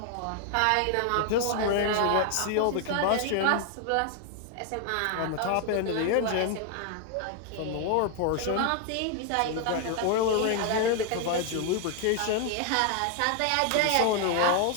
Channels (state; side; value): different; both; correlation 0.00